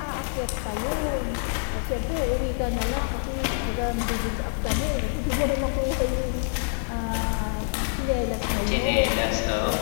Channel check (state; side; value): silent; right; 58 dB below the other